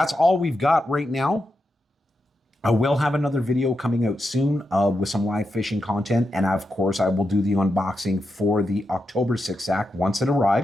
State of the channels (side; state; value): both; normal; correlation 0.86